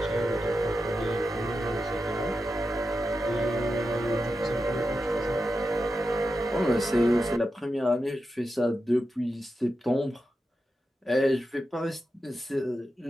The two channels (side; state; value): both; normal; correlation 0.89